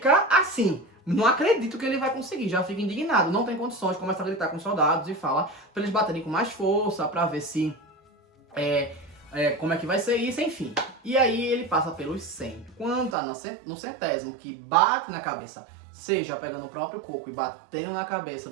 assim... Não acredito que ele vai conseguir, já fica indignado, não tem condições, começa a gritar com os soldados e fala pra eles baterem com mais força, pra ver se, como é que vai ser isso, enfim. E aí ele passa pelos 100. Quando tá no 100º, que bate na cabeça, seja pegando o próprio coco e batendo na cabeça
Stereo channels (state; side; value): drops out; left; at 13.2 s